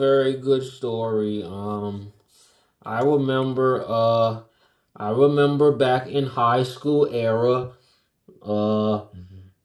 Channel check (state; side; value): identical; both; correlation 1.00